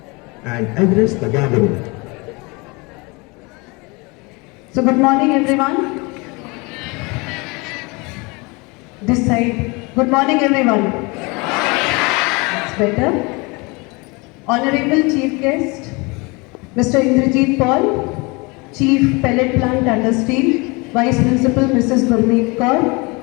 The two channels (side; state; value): right; quieter; 27.2 dB